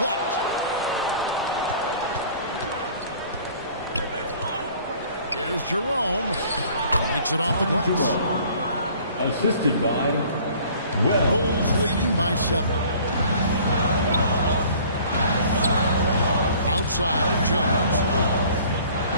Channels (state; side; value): inverted; both; correlation -0.52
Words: Here's Jerome. Makes it off the glass. Assisted by Wells. Bulls leading by 7. Outside, Jones.